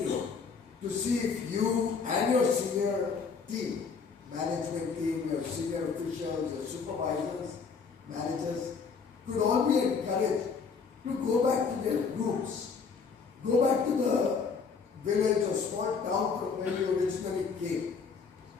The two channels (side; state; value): right; quieter; 5.4 dB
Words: to see if you and your senior team, management team, your senior officials, your supervisors, managers, could all be encouraged to go back to their roots, go back to the village or small town from where you originally came,